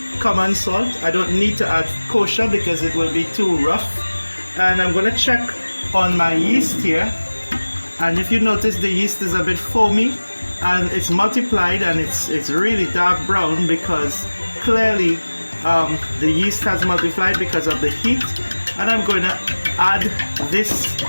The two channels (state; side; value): inverted; both; correlation -1.00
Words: common salt. I don't need to add kosher because it will be too rough. And I'm going to check on my yeast here, and if you notice, the yeast is a bit foamy and it's multiplied and it's really dark brown because clearly the yeast has multiplied because of the heat. And I'm going to add this